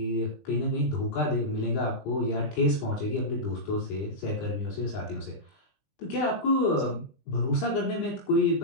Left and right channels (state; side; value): late; right; 20 ms